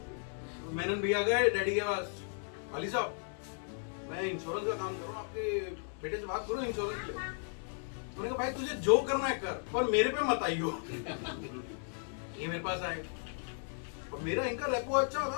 मेनन भैया गए डैडी के पास अली साहब मैं इंश्योरेंस का काम कर रहा हूँ आपके बेटे से बात करो इंश्योरेंस के लिए उन्होंने कहा भाई तुझे जो करना है कर पर मेरे पे मत आइयो ये मेरे पास आए और मेरा इनका रेपो अच्छा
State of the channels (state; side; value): silent; right; 54 dB below the other